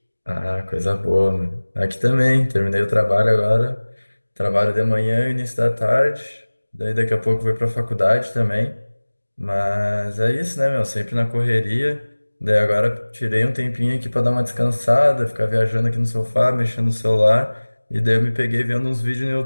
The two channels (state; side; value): inverted; both; correlation -1.00